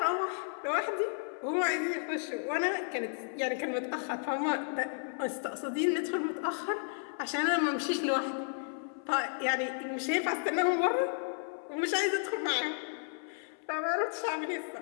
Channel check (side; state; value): right; silent; 56 dB below the other